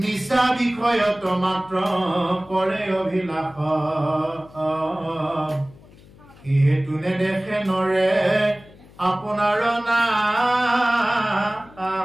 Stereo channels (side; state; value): left; noise; hum, 24 dB below the sound